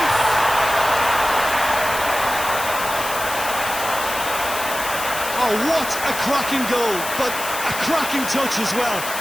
Oh, what a cracking goal, but a cracking touch as well.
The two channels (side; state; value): left; noise; hiss, 7 dB below the sound